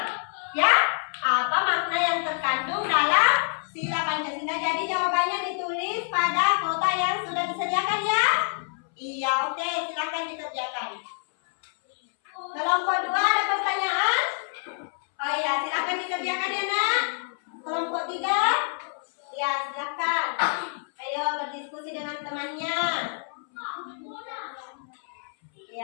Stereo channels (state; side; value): silent; right; 60 dB below the other